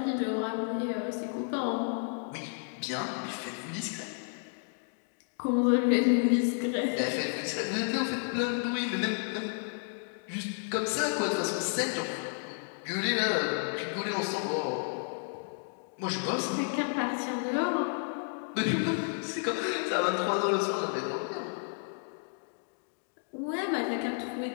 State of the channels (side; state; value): right; silent; 57 dB below the other